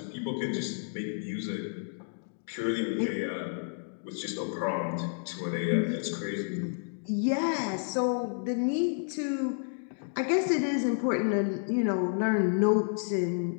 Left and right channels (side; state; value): right; silent; digital silence